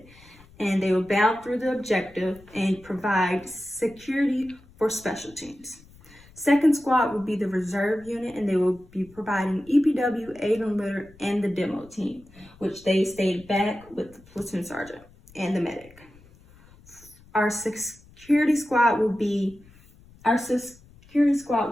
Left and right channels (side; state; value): left; noise; rumble, 25 dB below the sound